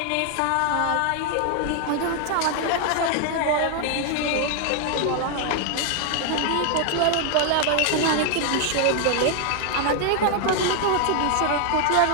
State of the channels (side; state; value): both; different; correlation 0.00